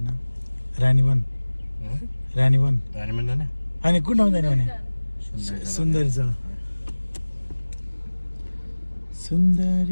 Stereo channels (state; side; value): inverted; both; correlation -1.00